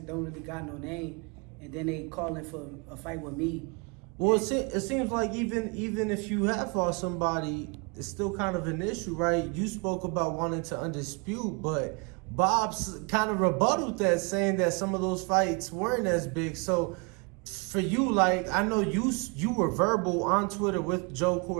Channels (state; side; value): quieter; left; 32.3 dB